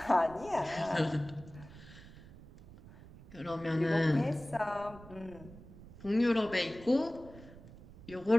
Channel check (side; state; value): right; noise; rumble, 18 dB below the sound